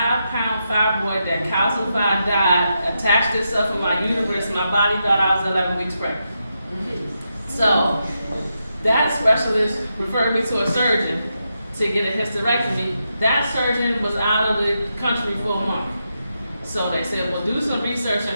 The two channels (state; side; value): inverted; both; correlation -0.85